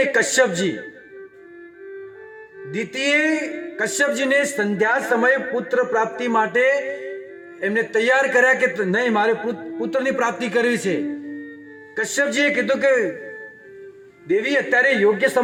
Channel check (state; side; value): identical; both; correlation 1.00